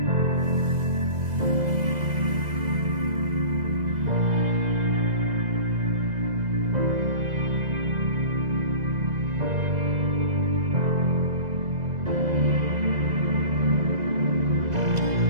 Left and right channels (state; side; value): late; left; 2.0 ms